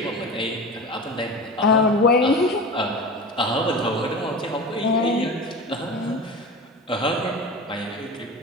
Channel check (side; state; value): both; normal; correlation 0.30